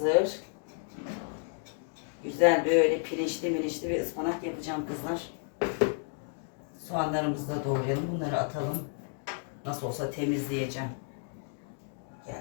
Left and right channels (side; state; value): right; silent; 57 dB below the other